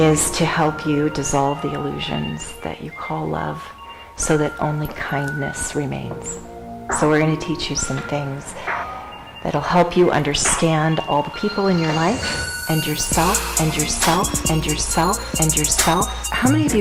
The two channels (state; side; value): identical; both; correlation 1.00